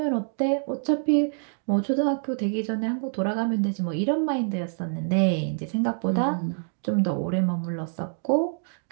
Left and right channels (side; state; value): left; silent; digital silence